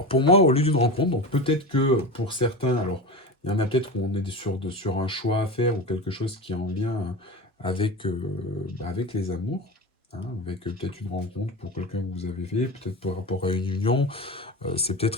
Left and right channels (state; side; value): normal; both; correlation 0.26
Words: pour moi, au lieu d'une rencontre, donc peut-être que pour certains, alors, il y en a peut-être où on est sur un choix à faire, ou quelque chose qui est en lien avec les amours, hein, avec peut-être une rencontre pour quelqu'un que vous avez fait, peut-être par rapport à une union, c'est